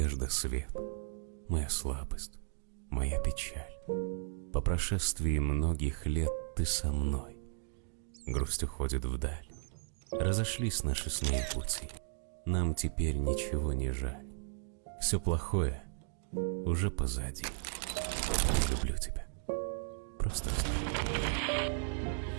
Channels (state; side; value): silent; left; digital silence